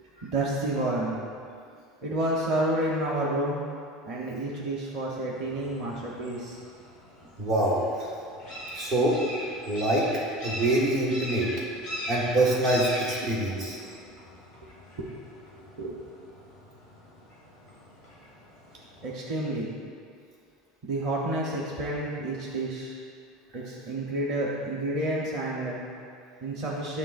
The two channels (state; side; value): normal; both; correlation 0.34